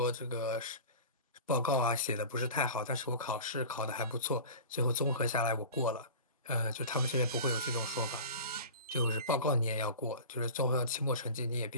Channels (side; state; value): both; inverted; correlation -0.35